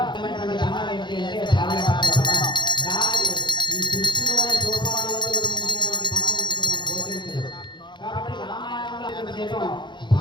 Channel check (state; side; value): late; right; 0.22 ms